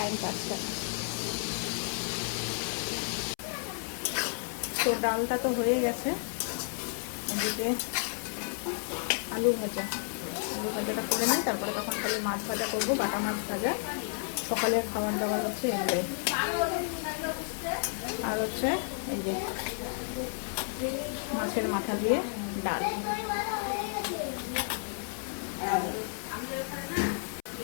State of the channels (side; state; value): right; silent; 57 dB below the other